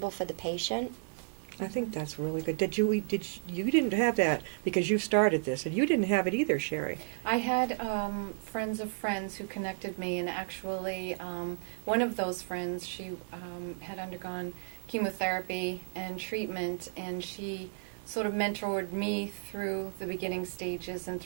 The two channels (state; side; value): silent; left; digital silence